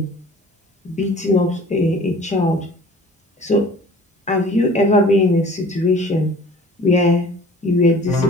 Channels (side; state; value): both; normal; correlation 0.47